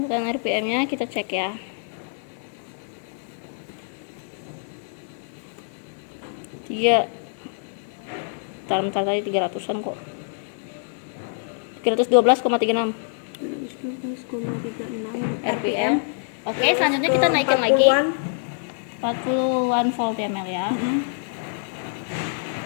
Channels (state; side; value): silent; right; digital silence